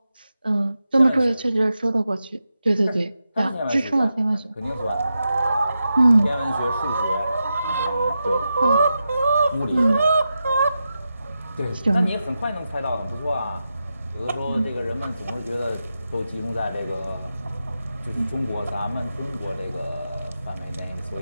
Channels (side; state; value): both; inverted; correlation -0.89